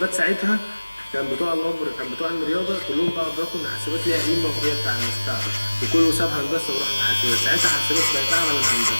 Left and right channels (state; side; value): inverted; both; correlation -1.00